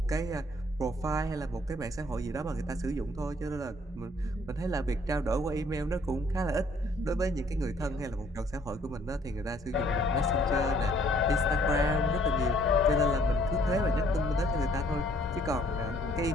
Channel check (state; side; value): normal; both; correlation 0.62